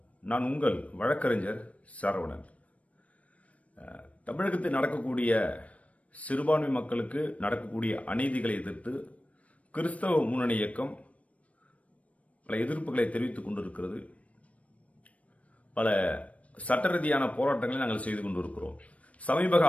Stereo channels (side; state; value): right; late; 0.066 ms